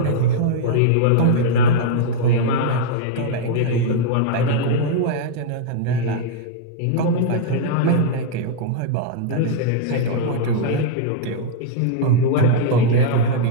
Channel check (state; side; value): different; both; correlation -0.01